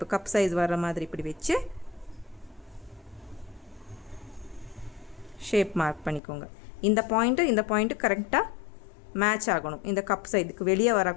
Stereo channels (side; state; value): right; drops out; at 6.2 s